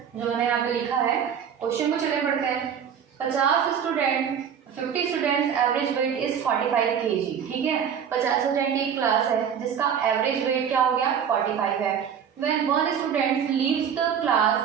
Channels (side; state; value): left; quieter; 8.0 dB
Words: जो मैंने यहाँ पे लिखा है, क्वेश्चन को चले पढ़ते हैं। 50 students average weight is 45 kg। ठीक है, 50 स्टूडेंट की एक क्लास है जिसका एवरेज वेट क्या हो गया, 45 है। When one student leaves the class,